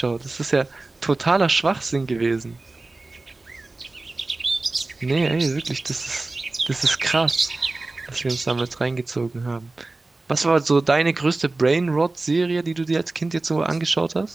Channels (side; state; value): left; quieter; 3.2 dB